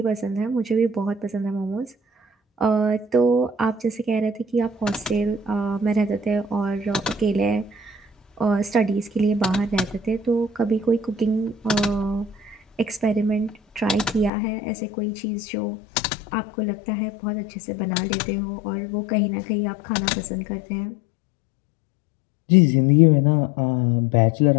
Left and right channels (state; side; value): drops out; right; at 14.3 s